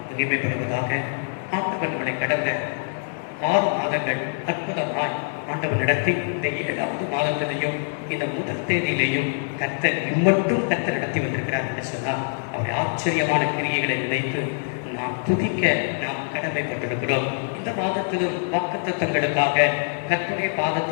மகிமைப்படுவதாக. ஆண்டவர் நம்மளை கடந்த 6 மாதங்கள் அற்புதமாய் ஆண்டவர் நடத்தி இந்த 7வது மாதத்திலையும் இந்த முதல் தேதியிலையும் கர்த்தர் இம்மட்டும் கர்த்தர் நடத்தி வந்திருக்கிறார் என்று சொன்னால் அவருடைய ஆச்சரியமான கிரியைகளை நினைத்து நாம் துதிக்க நாம் கடமைப்பட்டிருக்கிறோம். இந்த மாதத்திலும் வாக்குத்தத்தங்களுக்காக கர்த்தருடைய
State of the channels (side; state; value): right; silent; 62 dB below the other